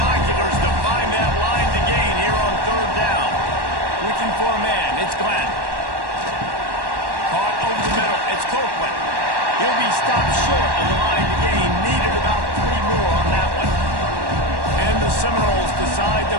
to find that line. looking for a man. It's Glenn. Caught over the middle. It's Copeland. He'll be stopped short of the line to gain. Needed about 3 more on that one. And the Seminoles decide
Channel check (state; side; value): late; left; 1.1 ms